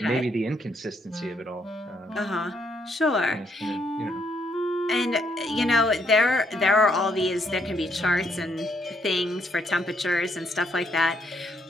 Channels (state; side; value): normal; both; correlation 0.73